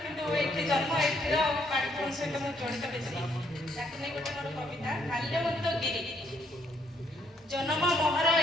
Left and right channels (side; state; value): both; normal; correlation 0.70